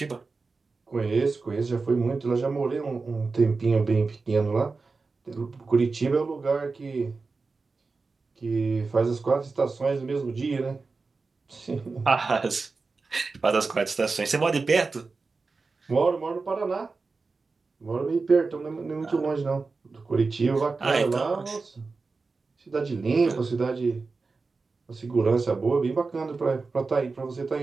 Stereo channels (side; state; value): left; quieter; 4.2 dB